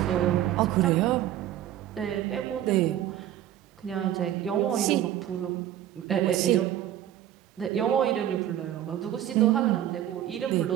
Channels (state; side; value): quieter; left; 12.0 dB